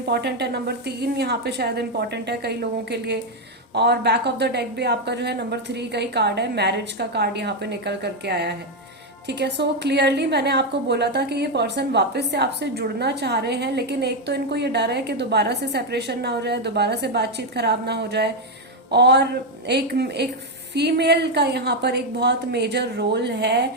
है। नंबर 3 यहाँ पे शायद इंपॉर्टेंट है कई लोगों के लिए। और बैक ऑफ द डेक भी आपका जो है नंबर 3 का ही कार्ड है, मैरिज का कार्ड यहाँ पे निकल करके आया है। ठीक है, सो क्लियरली मैंने आपको बोला था कि ये पर्सन वापस से आपसे जुड़ना चाह रहे हैं, लेकिन एक तो इनको ये डर है कि दोबारा से सेपरेशन ना हो जाए, दोबारा से बातचीत खराब ना हो जाए, और एक फीमेल का यहाँ पर एक बहुत मेजर रोल है।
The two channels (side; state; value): both; normal; correlation 0.05